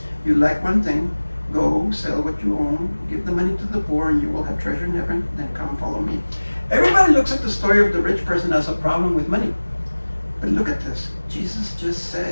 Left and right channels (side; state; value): both; inverted; correlation -1.00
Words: "You lack one thing. Go, sell what you own, give the money to the poor, and you will have treasure in heaven. Then come follow me." Everybody looks at the story of the rich person as a problem with money. But look at this. Jesus just